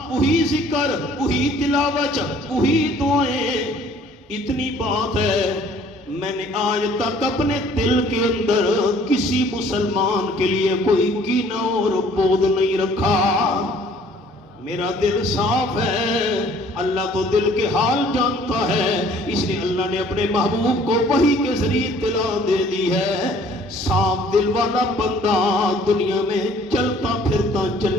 وہی ذکر، وہی تلاوت، وہی دعائیں۔ اتنی بات ہے میں نے آج تک اپنے دل کے اندر کسی مسلمان کے لیے کوئی کینہ اور بغض نہیں رکھا، میرا دل صاف ہے۔ اللہ تو دل کے حال جانتا ہے، اس لیے اللہ نے اپنے محبوب کو وحی کے ذریعے اطلاع دے دی ہے صاف دل والا بندہ دنیا میں چلتا پھرتا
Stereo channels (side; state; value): both; normal; correlation 0.56